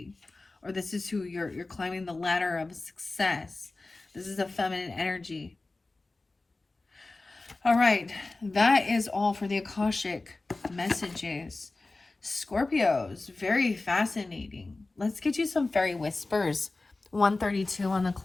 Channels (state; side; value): quieter; right; 3.3 dB